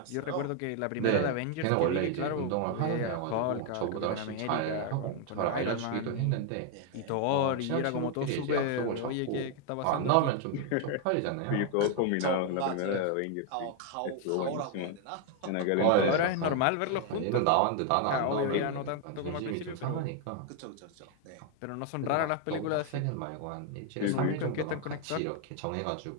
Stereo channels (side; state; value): both; different; correlation 0.01